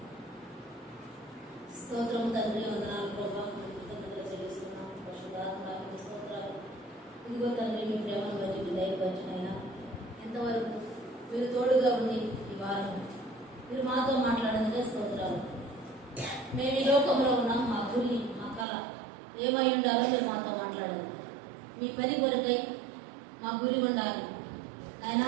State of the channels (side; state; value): left; drops out; at 18.7 s